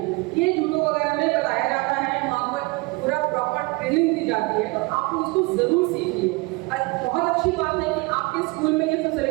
ये जूडो वगैरह में बताया जाता है, वहाँ पर पूरा प्रॉपर ट्रेनिंग दी जाती है, तो आप उसको जरूर सीखिए। बहुत अच्छी बात है कि आपके स्कूल में ये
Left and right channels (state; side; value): quieter; left; 25.8 dB